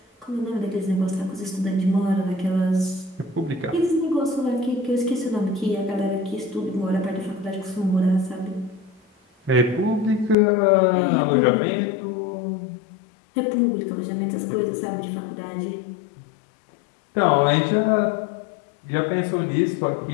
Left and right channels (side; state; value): right; drops out; at 10.4 s